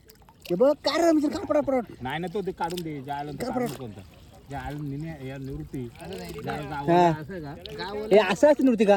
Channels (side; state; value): both; identical; correlation 1.00